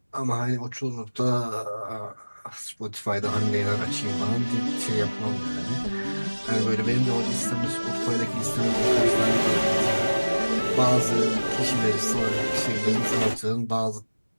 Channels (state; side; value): inverted; both; correlation -1.00